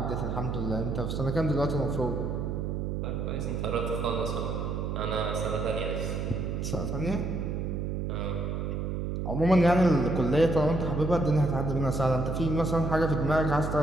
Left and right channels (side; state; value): right; noise; hum, 2 dB below the sound